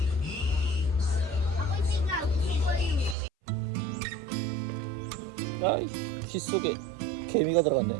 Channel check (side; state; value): left; drops out; at 3.2 s